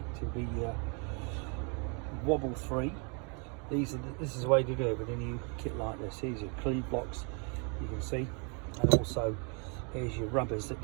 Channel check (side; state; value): left; quieter; 35.8 dB